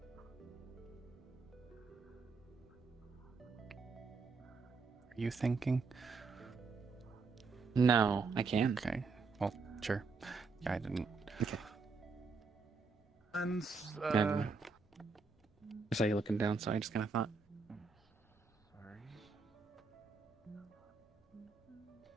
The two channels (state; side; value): quieter; left; 4.4 dB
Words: you thinking? No, I can. Okay. Well, sure. Yeah, I didn't. Okay. And I saw you looking down, so I just kind of thought.